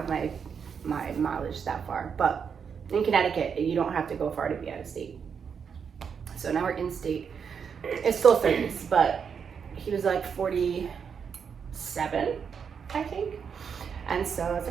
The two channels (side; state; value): left; quieter; 6.7 dB